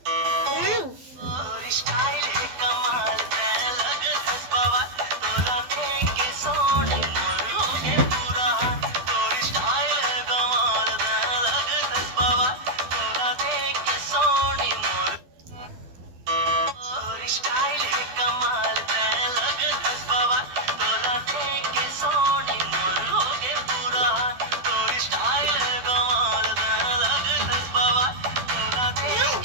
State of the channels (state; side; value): late; left; 12 ms